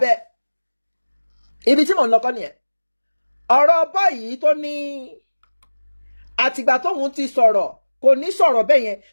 ibi tí mò ń lọ́kọ́ nìyẹn ọ̀rọ̀ báyìí tó ní àtìgbà tóun ti sọ̀rọ̀ kò ní sọ̀rọ̀ bẹ́ẹ̀ yẹn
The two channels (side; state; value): both; inverted; correlation -1.00